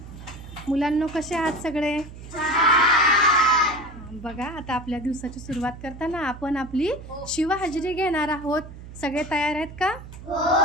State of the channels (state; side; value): noise; right; hum, 14 dB below the sound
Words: मुलांनो, कसे आहात सगळे? बघा, आता आपल्या दिवसाची सुरुवात करताना आपण आपली शिवहाजरी घेणार आहोत. सगळे तयार आहेत का? हो.